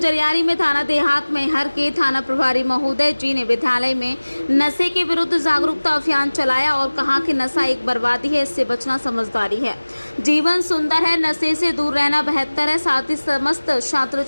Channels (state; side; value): inverted; both; correlation -1.00